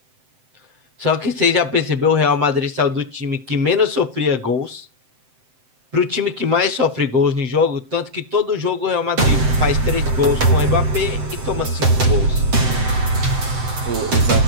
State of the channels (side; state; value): left; late; 7.7 ms